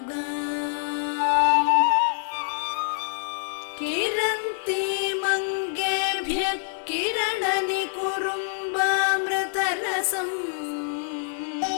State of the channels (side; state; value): right; silent; digital silence